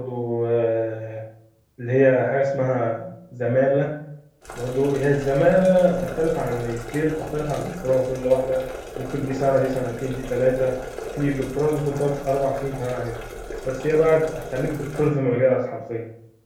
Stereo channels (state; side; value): identical; both; correlation 1.00